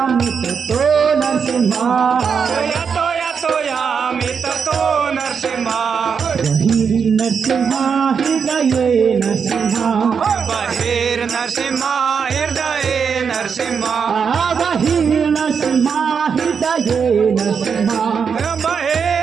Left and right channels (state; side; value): quieter; left; 6.4 dB